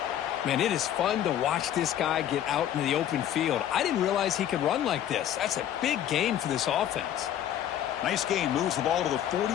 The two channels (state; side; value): quieter; right; 10.9 dB